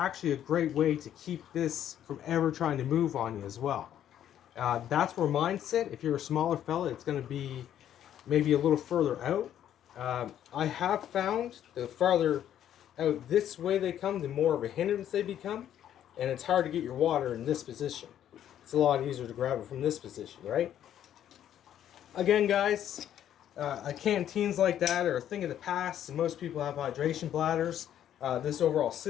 a great way to keep this from ever trying to move on you as well. That's where mine sit. If you're a smaller fella, it's going to be maybe a little further out. I have found the farther out this way they come, the more of a hindrance they become, and it's hard to get your water in this position. It's a lot easier to grab it from this position, right? Again, guys, canteens like that are a thing of the past, and most people have hydration bladders. This overall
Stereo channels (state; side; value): quieter; right; 10.7 dB